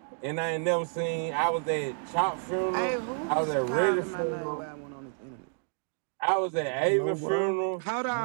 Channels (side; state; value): left; silent; 58 dB below the other